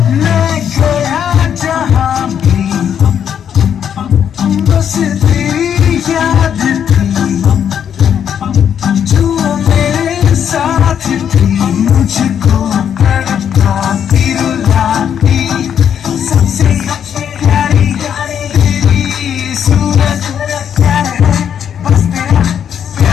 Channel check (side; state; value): right; quieter; 8.6 dB